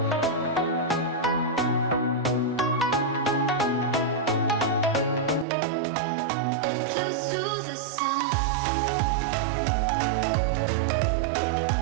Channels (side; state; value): left; drops out; at 5.5 s